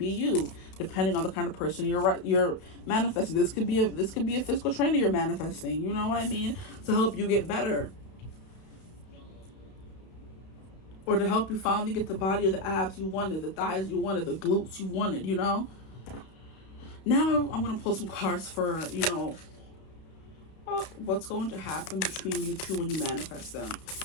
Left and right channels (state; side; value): late; right; 32 ms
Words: you, depending on the kind of person you're manifesting. This could be a physical trainer you're manifesting. You know what I mean? To help you get better, or to help you finally get the body or the abs you wanted, the thighs you wanted, the glutes you wanted. Now I'm going to pull some cards for what's going to happen between you two when you manifest them.